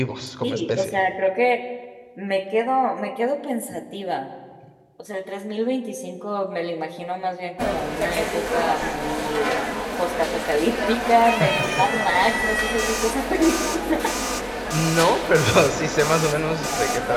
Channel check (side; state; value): both; identical; correlation 1.00